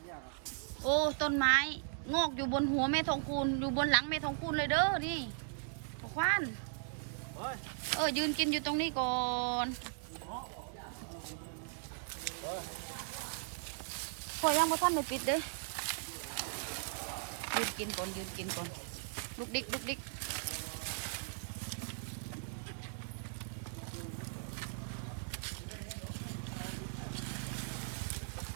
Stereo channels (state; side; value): silent; left; digital silence